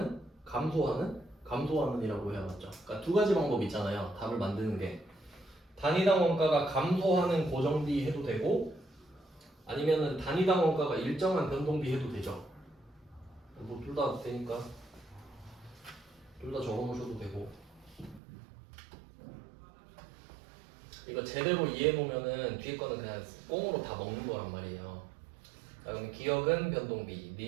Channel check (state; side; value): drops out; left; at 18.2 s